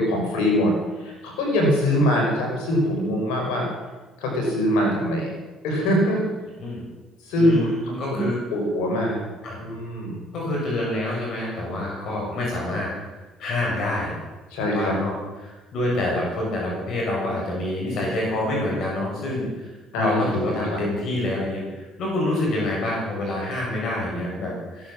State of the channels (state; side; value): normal; both; correlation 0.58